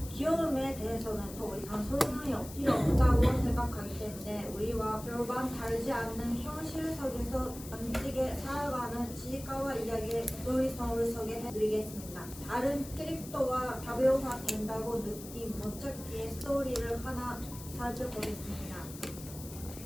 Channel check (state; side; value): noise; left; hiss, 14 dB below the sound